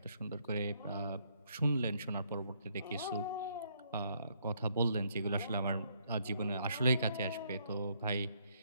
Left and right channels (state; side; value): inverted; both; correlation -0.70